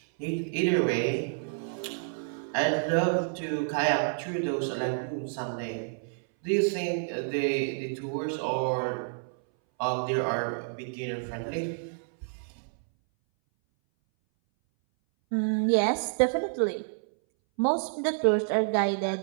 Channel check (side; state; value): left; silent; 59 dB below the other